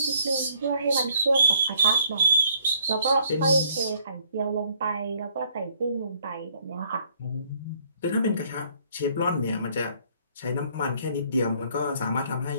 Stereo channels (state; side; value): inverted; both; correlation -0.64